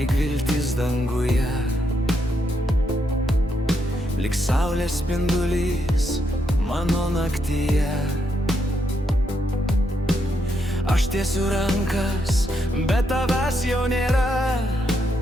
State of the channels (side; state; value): both; normal; correlation 0.79